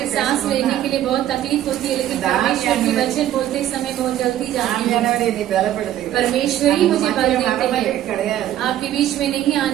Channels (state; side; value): quieter; left; 12.2 dB